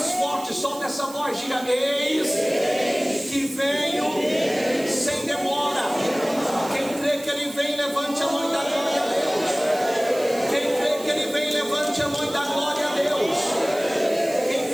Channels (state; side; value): noise; right; hiss, 16 dB below the sound